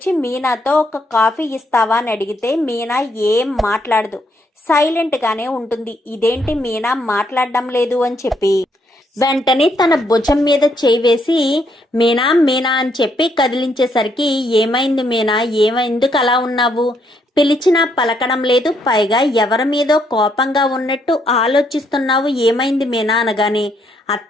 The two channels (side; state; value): both; normal; correlation 0.73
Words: మీనాతో ఒక కాఫీ ఇస్తావా అని అడిగితే మీనా ఏం మాట్లాడదు, సైలెంట్గానే ఉంటుంది. ఇదేంటి మీనా మాట్లాడడం లేదు అని చెప్పి వెంటనే తన భుజం మీద చేయి వేసి మీనా మీనా అని చెప్పి కదిలించేసరికి ఏమైంది మీనా, ఎందుకు అలా ఉన్నావు, పిలిచినా పలకడం లేదు, పైగా ఎవరి మీదో కోపంగా ఉన్నట్టు ఆలోచిస్తున్నావు, ఏమైంది మీనా అనగానే